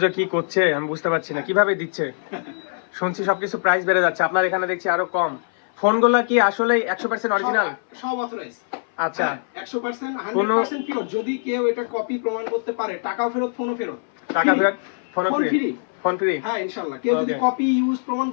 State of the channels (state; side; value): silent; right; 61 dB below the other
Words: যে কি করছে আমি বুঝতে পারছি না, কিভাবে দিচ্ছে। শুনছি সবকিছু প্রাইস বেড়ে যাচ্ছে, আপনার এখানে দেখছি আরো কম। ফোনগুলো কি আসলেই 100% অরিজিনাল? সব অথরাইজ। আচ্ছা, 100% কোনো- 100% পিওর। যদি কেউ এটা কপি প্রমাণ করতে পারে, টাকাও ফেরত, ফোনও ফেরত। টাকা Free। ফেরত, phone phone free. free। Phone free. হ্যাঁ, ইনশাআল্লাহ। কেউ যদি Okay. কপি ইউজ প্রমাণ